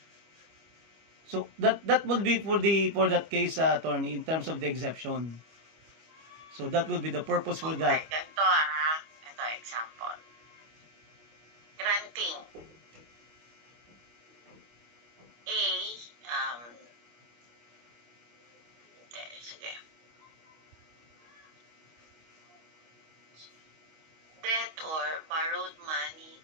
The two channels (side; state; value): left; late; 25 ms